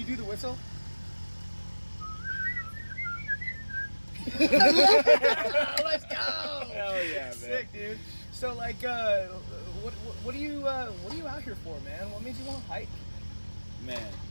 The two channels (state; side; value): inverted; both; correlation -1.00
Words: do the whistle? Let's go! Hell yeah, man. Sick, dude. So, like, what are you out here for, man? What made you want to hike? Man.